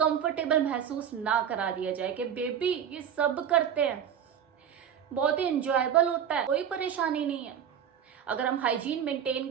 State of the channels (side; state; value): left; quieter; 8.6 dB